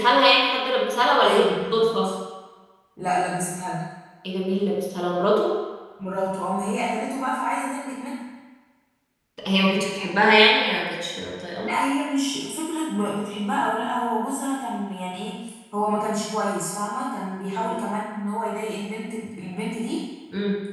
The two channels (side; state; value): both; identical; correlation 1.00